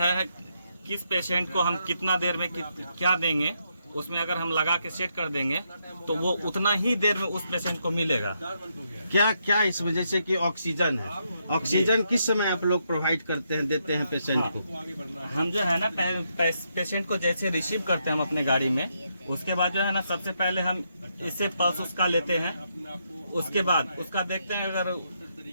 किस पेशेंट को हम कितना देर में क्या देंगे, उसमें अगर हम लगा के सेट कर देंगे तो वो उतना ही देर में उस पेशेंट को मिलेगा। क्या क्या इसमें, जैसे कि ऑक्सीजन है, ऑक्सीजन किस समय आप लोग प्रोवाइड करते हैं, देते हैं पेशेंट को? हम जो है ना पेशेंट को जैसे रिसीव करते हैं हम अपने गाड़ी में, उसके बाद जो है ना सबसे पहले हम इससे पल्स उसका लेते हैं। उसके बाद उसका देखते हैं, अगर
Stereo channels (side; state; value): both; inverted; correlation -0.79